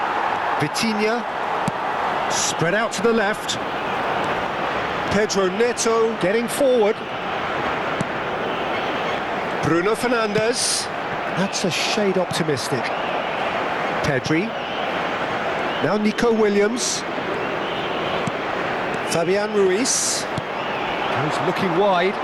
Vitinha. Spread out to the left. Pedro Neto getting forward. Bruno Fernandes. That's a shade optimistic. Pedri. Now Nico Williams. Fabian Ruiz. He's looking wide.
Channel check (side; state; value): both; identical; correlation 1.00